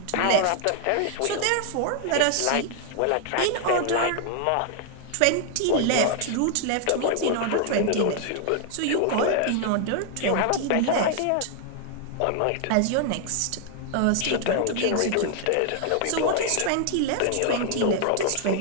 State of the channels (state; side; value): different; both; correlation 0.00